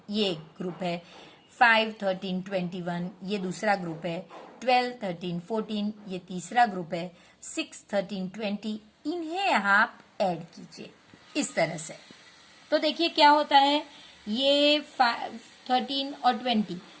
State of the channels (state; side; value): identical; both; correlation 1.00